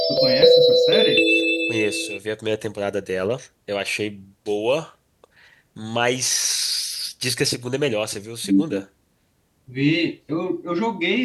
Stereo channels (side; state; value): both; identical; correlation 1.00